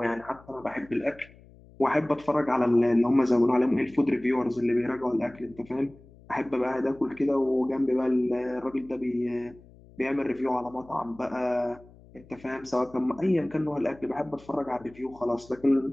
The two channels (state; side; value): noise; left; hum, 24 dB below the sound